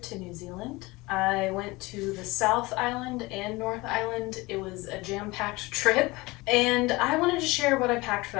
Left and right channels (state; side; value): quieter; right; 22.4 dB